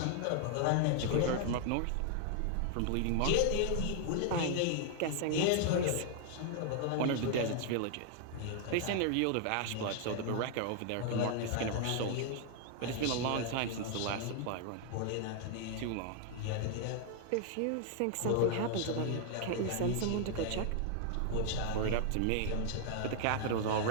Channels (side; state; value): both; different; correlation 0.00